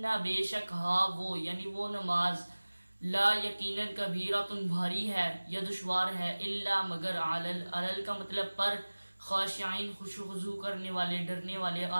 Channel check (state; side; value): inverted; both; correlation -1.00